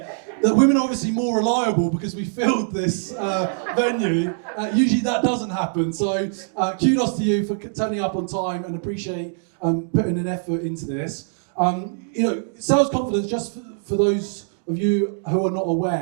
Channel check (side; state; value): left; silent; digital silence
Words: that women are obviously more reliable because we filled this venue. Usually that doesn't happen, so kudos to you for turning up on time and appreciate putting an effort into this. Sales confidence, just for those of you who are not